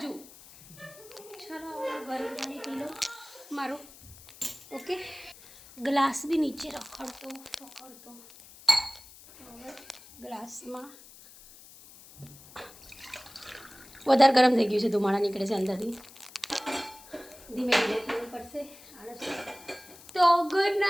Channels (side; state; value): left; noise; hiss, 20 dB below the sound